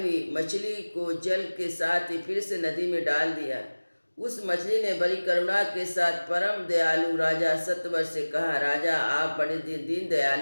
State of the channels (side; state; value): both; inverted; correlation -1.00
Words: मछली को जल के साथ ही फिर से नदी में डाल दिया। उस मछली ने बड़ी करुणा के साथ परम दयालु राजा सत्यव्रत से कहा, राजा, आप बड़े दीन